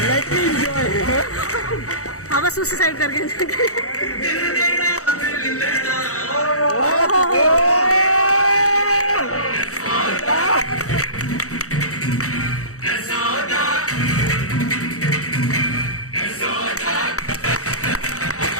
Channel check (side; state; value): right; late; 0.65 ms